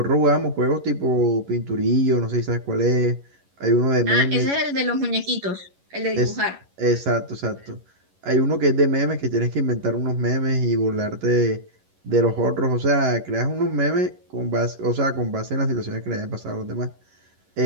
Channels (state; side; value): late; left; 11 ms